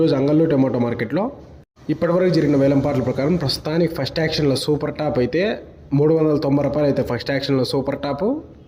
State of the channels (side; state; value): both; identical; correlation 1.00